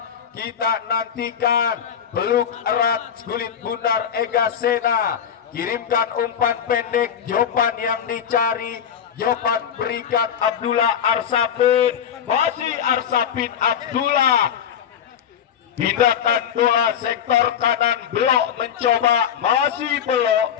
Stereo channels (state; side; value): quieter; right; 8.5 dB